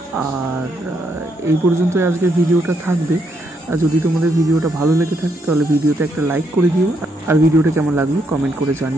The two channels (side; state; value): both; normal; correlation 0.76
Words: আর এই পর্যন্তই আজকে ভিডিওটা থাকবে। যদি তোমাদের ভিডিওটা ভালো লেগে থাকে তাহলে ভিডিওতে একটা লাইক করে দিও, আর ভিডিওটা কেমন লাগলো কমেন্ট করে